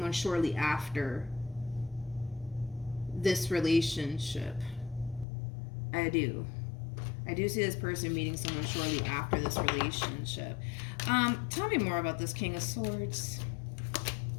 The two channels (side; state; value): right; drops out; at 5.2 s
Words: shortly after this relationship. I do. I do see this person meeting someone shortly after this relationship. Tell me more about this King of Swords.